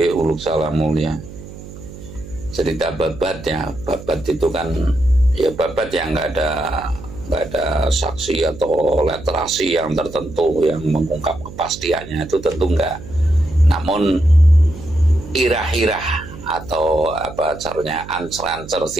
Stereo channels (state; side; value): noise; right; hum, 15 dB below the sound